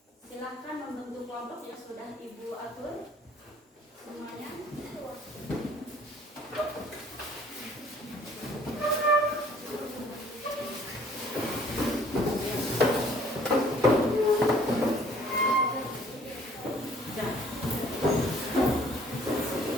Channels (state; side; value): normal; both; correlation 0.57